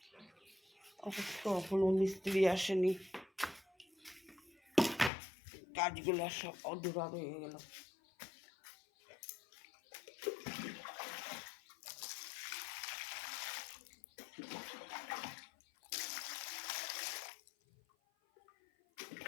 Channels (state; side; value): drops out; right; at 5.1 s